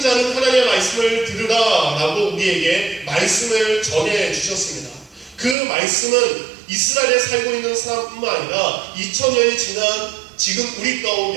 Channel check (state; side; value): drops out; left; at 5.6 s